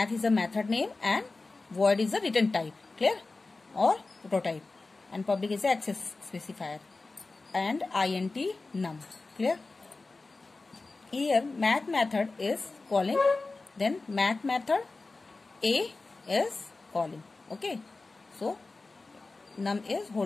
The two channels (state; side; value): quieter; right; 3.5 dB